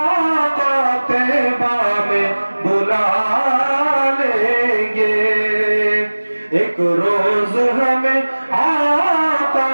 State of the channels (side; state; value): both; inverted; correlation -1.00